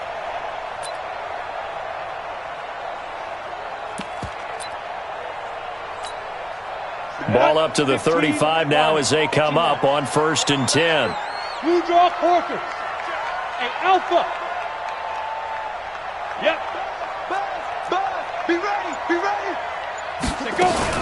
Ball up to the 35 now as they come up on 1st and 10. Blue draw quarters. Hey, Alpha. Yep. Be ready. Be ready. Say go.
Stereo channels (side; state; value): both; identical; correlation 1.00